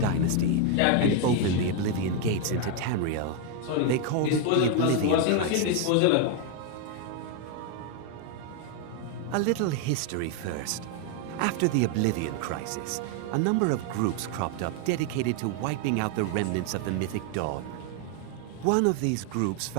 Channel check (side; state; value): both; different; correlation 0.01